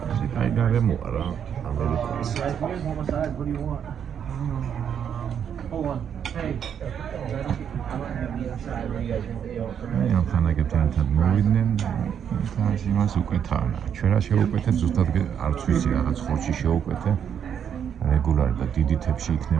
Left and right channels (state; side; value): quieter; left; 8.3 dB